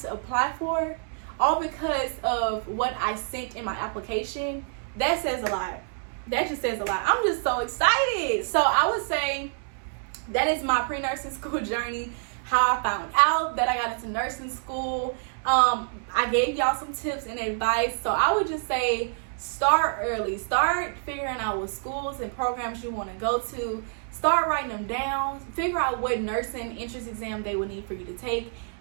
to apply for, all because of what I sent in my application, that says a lot. That just says a lot. I'm just so excited. So I would say that is my pre-nursing school journey, how I found out that I got into nursing school. I gave y'all some tips and advice. So I would just say, start early. Start figuring out what schools and programs you want to go to. Start writing them down. Figure out what nursing entrance exam they will need for you to take.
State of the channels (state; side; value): silent; left; 60 dB below the other